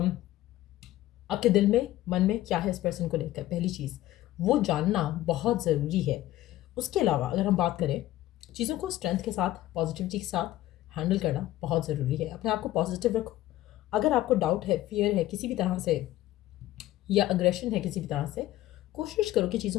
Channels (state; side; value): quieter; right; 15.1 dB